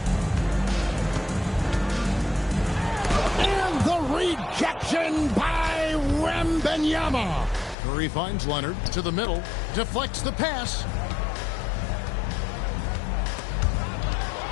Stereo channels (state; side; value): drops out; right; at 7.8 s